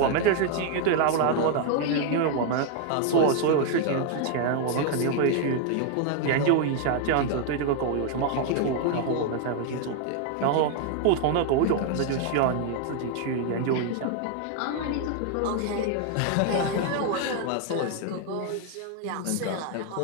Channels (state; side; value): different; both; correlation 0.00